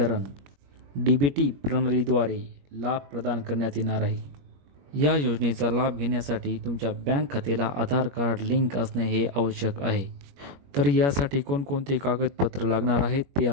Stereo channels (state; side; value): late; left; 21 ms